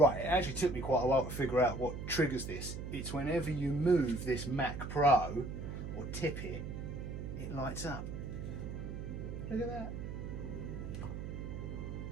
it actually took me quite a while to figure out what triggers this. It's whenever you move this Mac Pro or tip it, it lights up. Look at that. I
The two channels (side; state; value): right; noise; hum, 6 dB below the sound